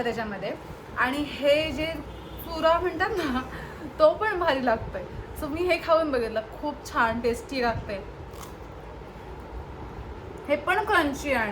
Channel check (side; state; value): both; identical; correlation 1.00